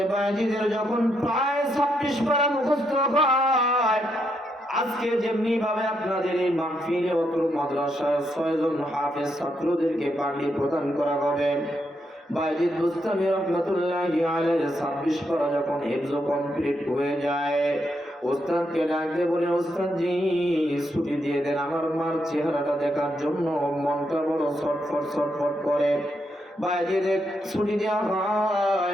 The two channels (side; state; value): both; normal; correlation 0.79